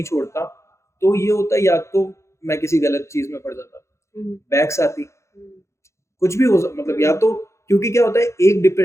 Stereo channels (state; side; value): late; right; 0.14 ms